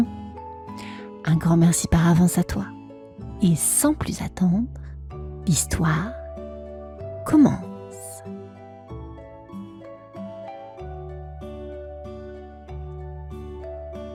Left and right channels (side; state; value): both; identical; correlation 1.00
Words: Un grand merci par avance à toi. Et sans plus attendre, l'histoire commence.